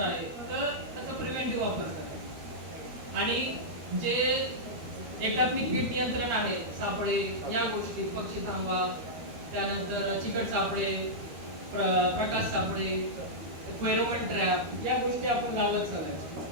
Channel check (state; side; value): late; left; 12 ms